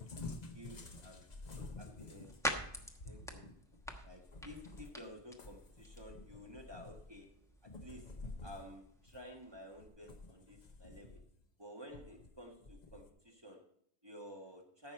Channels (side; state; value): both; normal; correlation 0.16